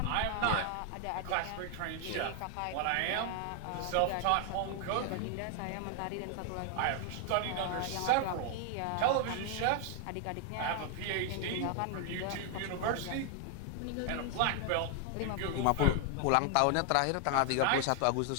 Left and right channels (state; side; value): different; both; correlation 0.00